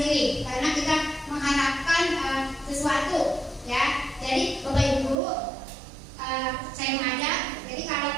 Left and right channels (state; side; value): drops out; left; at 5.2 s